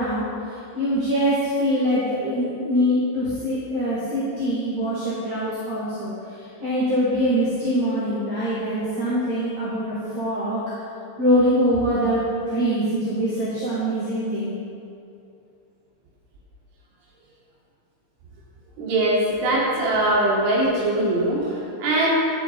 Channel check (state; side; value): late; left; 15 ms